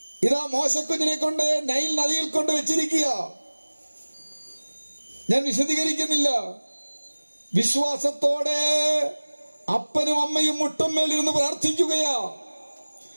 ഇതാ മോശക്കുഞ്ഞിനെ കൊണ്ട് നൈൽ നദിയിൽ കൊണ്ട് വെച്ചിരിക്കുക. ഞാൻ വിശദീകരിക്കുന്നില്ല. വിശ്വാസത്തോടെ അപ്പനും അമ്മയും മുട്ടമ്മേലിരുന്ന് പ്രാർത്ഥിക്കുകയാ.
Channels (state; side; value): inverted; both; correlation -1.00